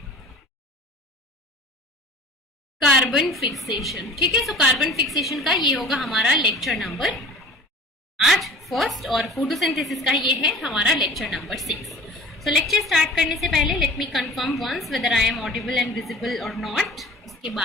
कार्बन फिक्सेशन। ठीक है, सो कार्बन फिक्सेशन का ये होगा हमारा लेक्चर नंबर आज फर्स्ट और फोटोसिंथेसिस का ये है हमारा lecture number 6। So lecture start करने से पहले let me confirm once whether I am audible and visible or not. उसके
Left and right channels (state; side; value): normal; both; correlation 0.42